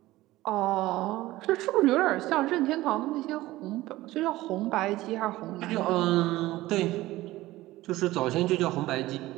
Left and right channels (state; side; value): quieter; left; 17.4 dB